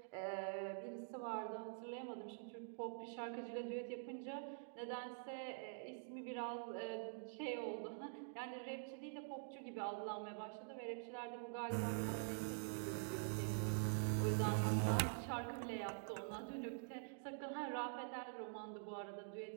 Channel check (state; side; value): silent; left; digital silence